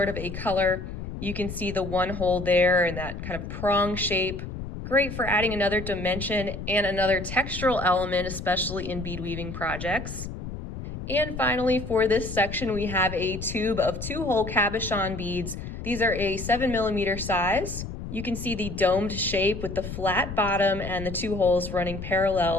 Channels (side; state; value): left; noise; rumble, 8 dB below the sound